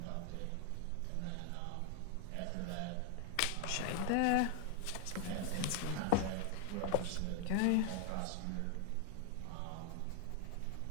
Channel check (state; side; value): different; both; correlation 0.00